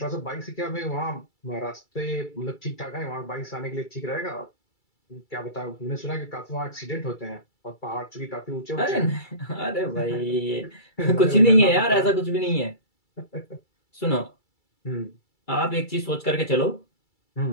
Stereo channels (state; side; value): late; right; 2.3 ms